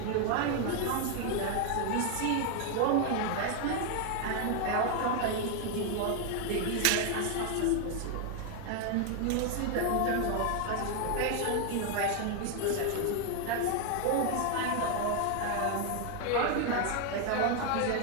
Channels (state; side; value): different; both; correlation 0.00